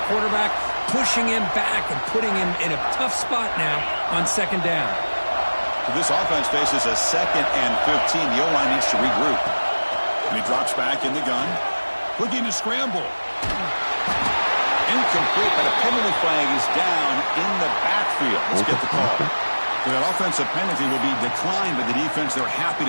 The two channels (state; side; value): inverted; both; correlation -1.00